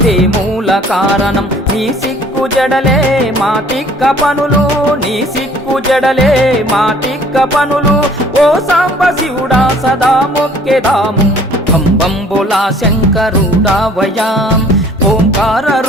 మూల కారణం నీ సిక్కు జడలే మా తిక్క పనులు నీ సిక్కు జడలే మా తిక్క పనులు ఓ సాంబ శివుడా సదా మొక్కెదాము బంబంబులా శంకరుడావయా ఓంకార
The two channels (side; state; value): both; normal; correlation 0.55